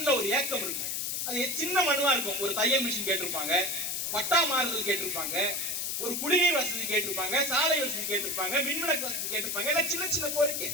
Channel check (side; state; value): left; noise; hiss, 1 dB below the sound